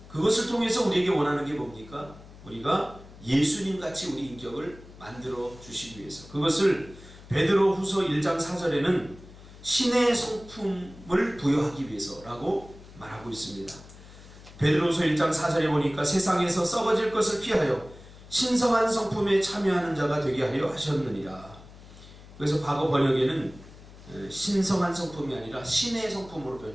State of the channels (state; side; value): noise; left; hum, 19 dB below the sound